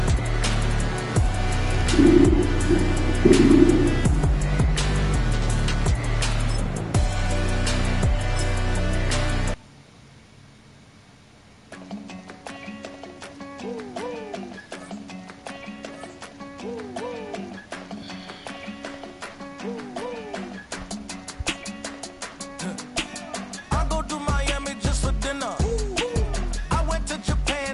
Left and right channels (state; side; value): identical; both; correlation 1.00